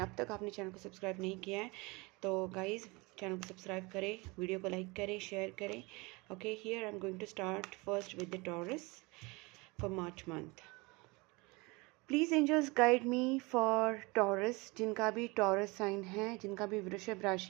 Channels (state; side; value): quieter; left; 25.7 dB